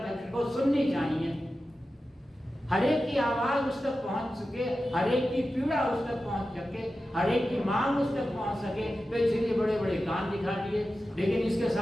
को सुननी चाहिए। हर एक की आवाज उस तक पहुंच सके, हर एक की पीड़ा उस तक पहुंच सके, हर एक की मांग उस तक पहुंच सके। तो इसलिए बड़े बड़े कान दिखा दिए, लेकिन इसके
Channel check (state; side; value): normal; both; correlation 0.93